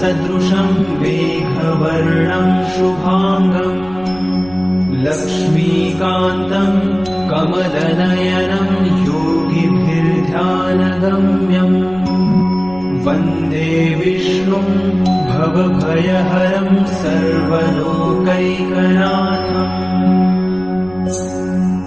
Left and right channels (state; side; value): noise; right; rumble, 20 dB below the sound